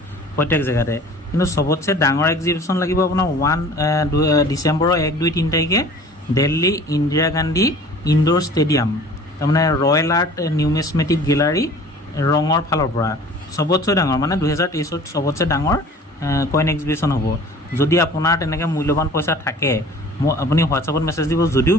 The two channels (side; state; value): both; normal; correlation 0.46